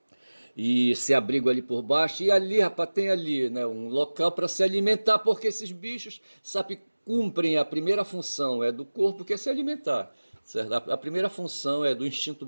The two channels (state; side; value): inverted; both; correlation -1.00